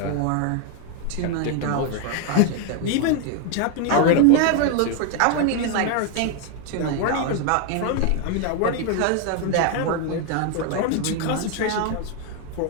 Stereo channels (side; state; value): both; different; correlation 0.01